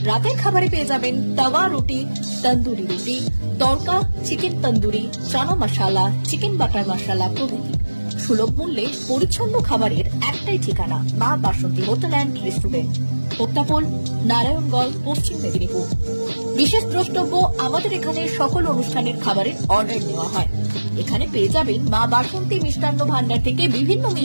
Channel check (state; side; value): inverted; both; correlation -1.00